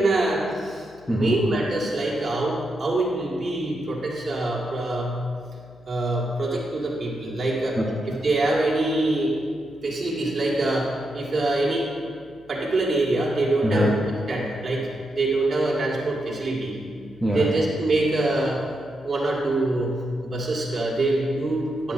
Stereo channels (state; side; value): noise; left; hum, 26 dB below the sound